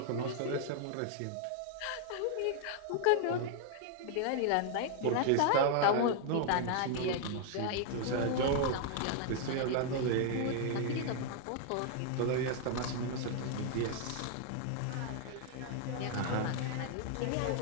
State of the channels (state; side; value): different; both; correlation 0.00